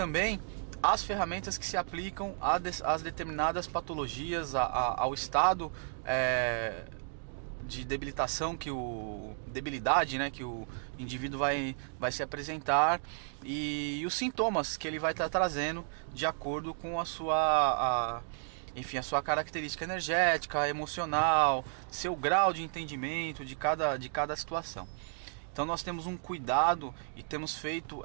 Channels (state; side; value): silent; left; digital silence